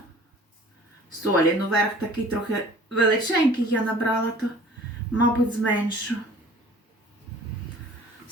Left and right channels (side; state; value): both; normal; correlation 0.48